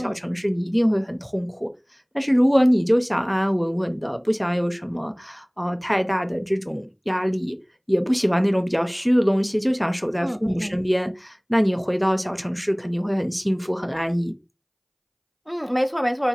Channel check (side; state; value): both; identical; correlation 1.00